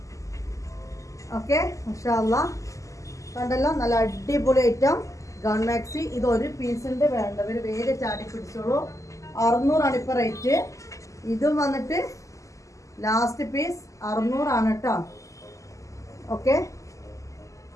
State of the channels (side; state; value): right; late; 0.16 ms